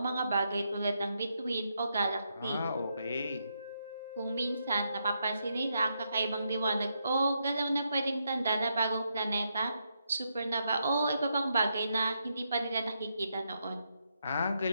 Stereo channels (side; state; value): both; inverted; correlation -0.81